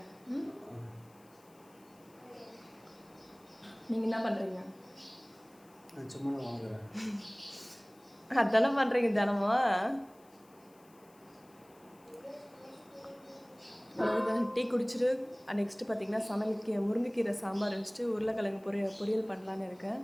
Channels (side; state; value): left; noise; hiss, 29 dB below the sound